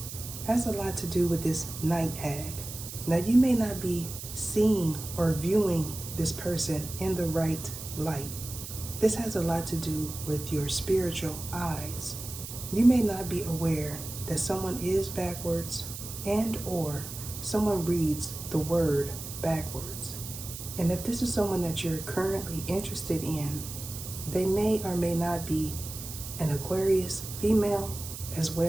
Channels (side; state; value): right; noise; hiss, 10 dB below the sound